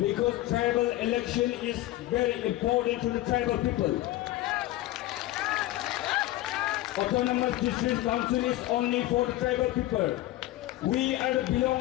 tribal election is very important to the tribal people. Autonomous District Council is only for the tribal people. We are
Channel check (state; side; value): quieter; right; 16.1 dB